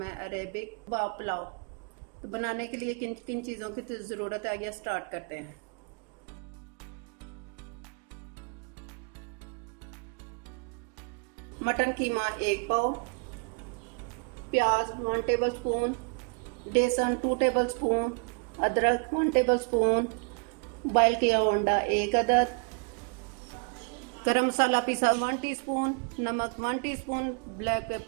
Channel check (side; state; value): left; quieter; 36.8 dB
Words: है अरेबिक कबाब पुलाव। तो बनाने के लिए किन किन चीज़ों की ज़रूरत है, आइए स्टार्ट करते हैं। मटन कीमा 1 पाव, प्याज 1 टेबल स्पून, बेसन 2 टेबल स्पून, अदरक 1 टेबल स्पून, बॉयल किया अंडा 1 अदद, गरम मसाला पीसा 1 टीस्पून, नमक 1 टीस्पून, ब्लैक